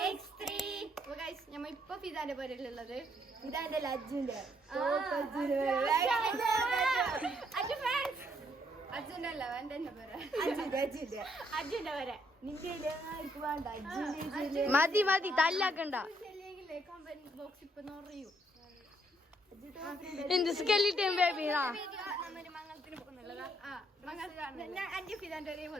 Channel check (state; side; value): normal; both; correlation 0.71